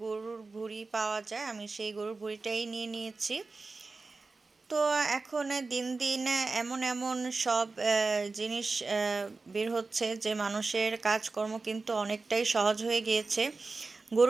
গরুর ভুঁড়ি পাওয়া যায়, আমি সেই গরুর ভুঁড়িটাই নিয়ে নিয়েছি। তো এখন দিন দিন এমন এমন সব জিনিস বের হচ্ছে যে মানুষের কাজকর্ম কিন্তু অনেকটাই সহজ হয়ে গিয়েছে।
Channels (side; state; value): left; quieter; 3.8 dB